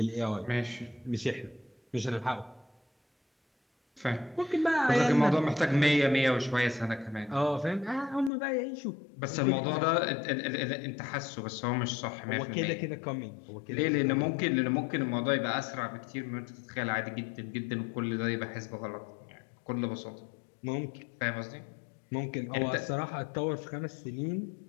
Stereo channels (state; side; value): drops out; right; at 8.3 s